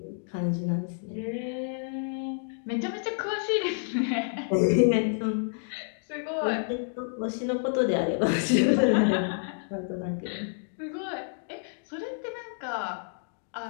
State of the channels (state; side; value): silent; right; digital silence